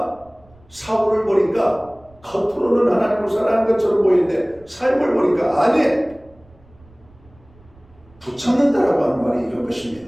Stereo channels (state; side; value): noise; right; rumble, 28 dB below the sound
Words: 사울을 보니까 겉으로는 하나님을 사랑하는 것처럼 보이는데 삶을 보니까 아니, 붙잡는다라고 하는 말이 이런 것입니다.